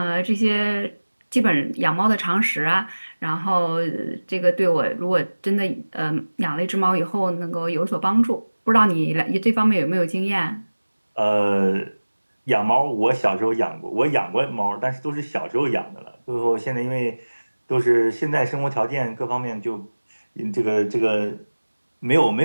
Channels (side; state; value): both; inverted; correlation -1.00